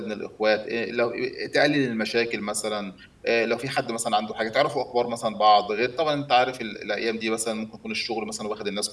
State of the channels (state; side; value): identical; both; correlation 1.00